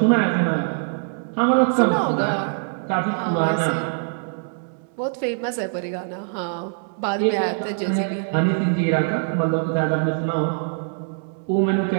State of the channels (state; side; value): silent; left; 63 dB below the other